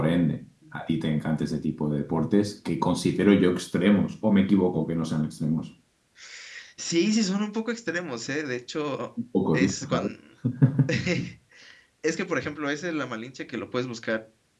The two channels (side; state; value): both; identical; correlation 1.00